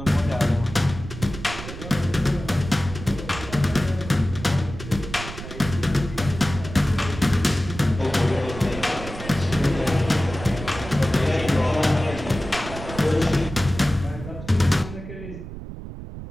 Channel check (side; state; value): right; noise; rumble, 11 dB below the sound